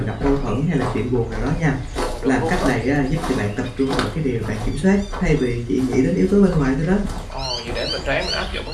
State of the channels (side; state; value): both; identical; correlation 1.00